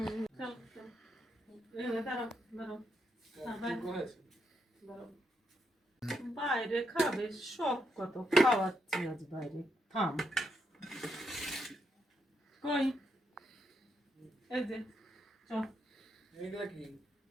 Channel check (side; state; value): both; normal; correlation 0.80